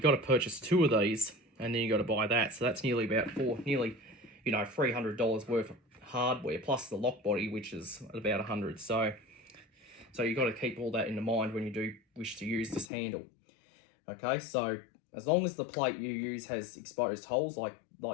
got to purchase 2 of these, and then you got to buy that. So that's nearly about $300 worth of hardware, plus the lock body, which is about $100. So you've got to keep all that in mind when you do wish to use this handle. Okay, so as long as the plate you use has exposed holes like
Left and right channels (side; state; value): right; drops out; at 12.9 s